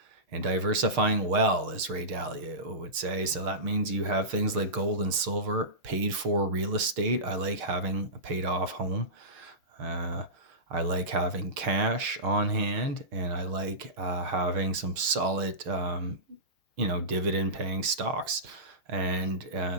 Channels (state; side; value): late; left; 6.5 ms